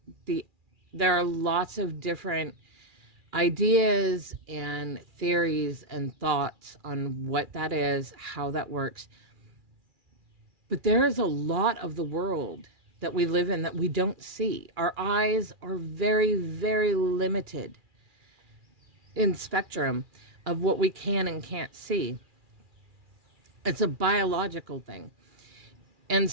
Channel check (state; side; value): late; left; 2.4 ms